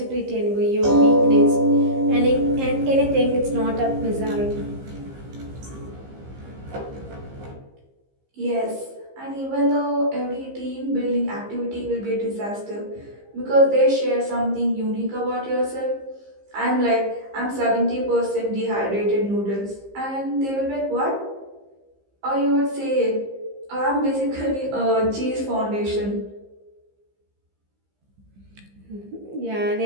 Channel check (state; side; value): late; left; 15 ms